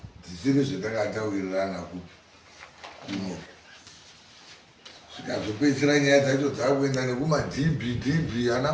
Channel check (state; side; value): identical; both; correlation 1.00